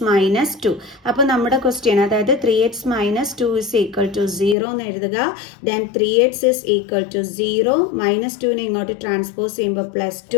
2. അപ്പോൾ നമ്മുടെ ക്വസ്റ്റ്യൻ, അതായത് 3x - 2 ഇസ് ഈക്വൽ ടു 0 എന്ന് എഴുതുക. Then 3x is equal to 0, -2നെ ഇങ്ങോട്ട് ട്രാൻസ്പോസ് ചെയ്യുമ്പോൾ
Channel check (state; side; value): drops out; right; at 4.5 s